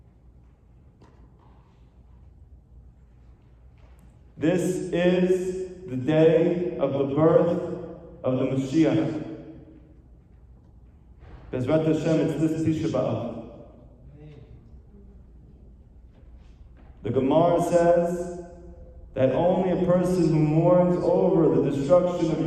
This is the day of the birth of the Mashiach. Bezrat Hashem, it's this Tisha B'Av. The Gemara says that only a person who mourns over the destruction of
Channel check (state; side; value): identical; both; correlation 1.00